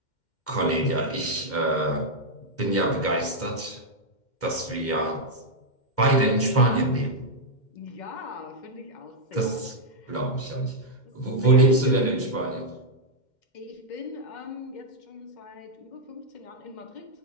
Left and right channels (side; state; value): right; late; 2.1 ms